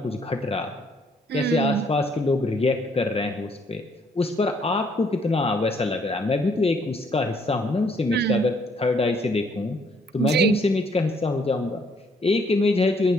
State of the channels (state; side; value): normal; both; correlation 0.66